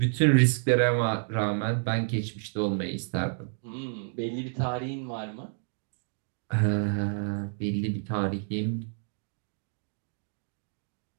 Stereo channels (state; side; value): silent; left; digital silence